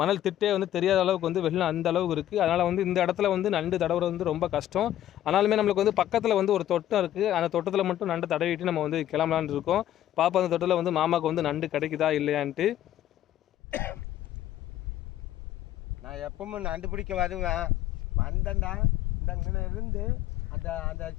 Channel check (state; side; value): quieter; right; 12.5 dB